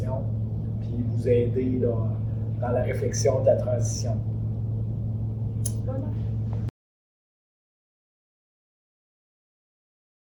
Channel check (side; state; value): both; identical; correlation 1.00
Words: puis vous aider là, dans la réflexion de la transition.